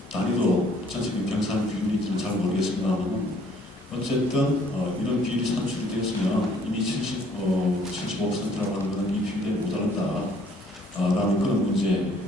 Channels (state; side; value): normal; both; correlation 0.61